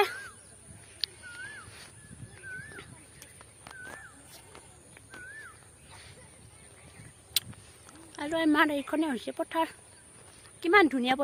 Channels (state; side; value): identical; both; correlation 1.00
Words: আৰু আমাৰ এইখনে হৈছে পথাৰ কিমান ধুনীয়া